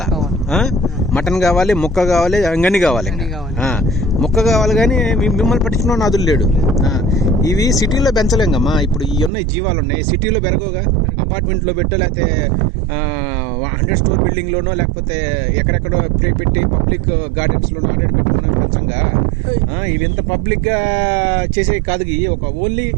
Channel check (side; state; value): left; drops out; at 9.3 s